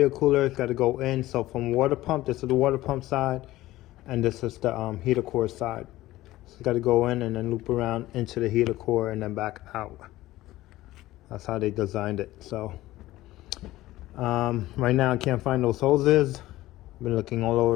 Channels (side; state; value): right; quieter; 16.5 dB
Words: cooler. It's got to go in. So from water pump, this is the water pump side, and this is the heater core side. So it's got to go in and then loop around into the heater core and then back out. That's how they designed it. So right now I can't find those hoses. I've been looking all